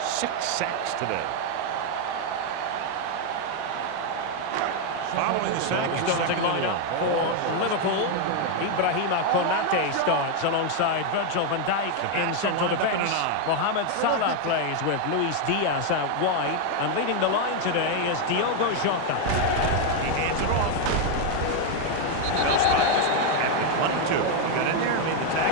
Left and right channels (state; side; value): different; both; correlation 0.01